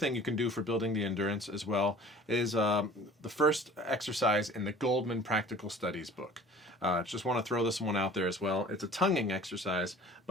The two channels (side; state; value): both; normal; correlation 0.47